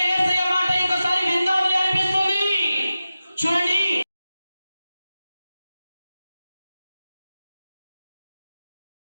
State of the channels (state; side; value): inverted; both; correlation -0.93